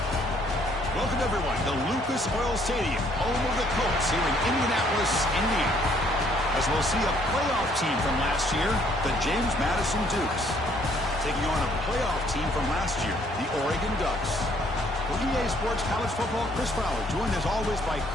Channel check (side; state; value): both; normal; correlation 0.64